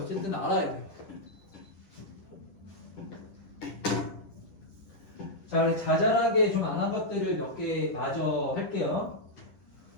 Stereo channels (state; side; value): late; right; 11 ms